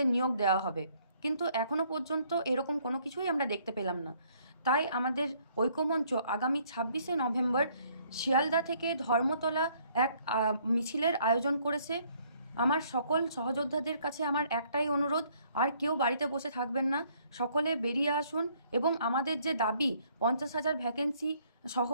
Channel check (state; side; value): inverted; both; correlation -0.64